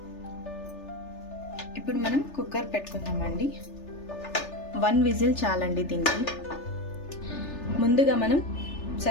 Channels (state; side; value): late; right; 3.4 ms